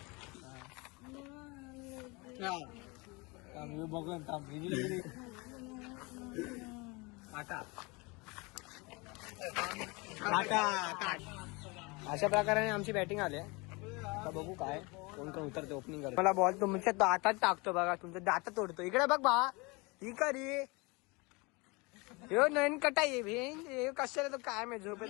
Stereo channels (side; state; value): right; quieter; 26.9 dB